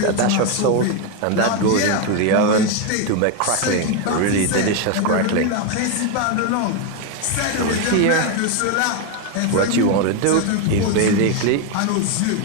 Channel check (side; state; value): both; different; correlation 0.02